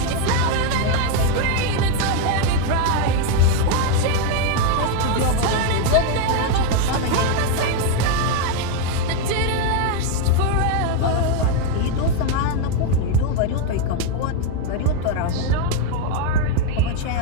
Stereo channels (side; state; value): both; different; correlation 0.01